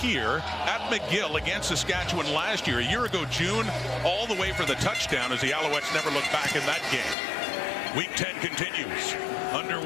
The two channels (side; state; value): right; drops out; at 7.2 s